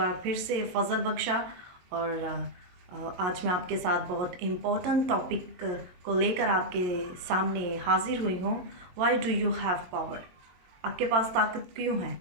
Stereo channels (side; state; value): left; late; 22 ms